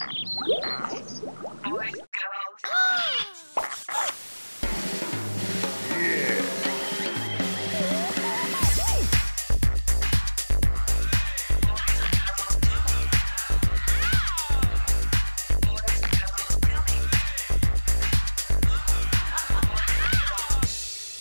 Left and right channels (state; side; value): inverted; both; correlation -1.00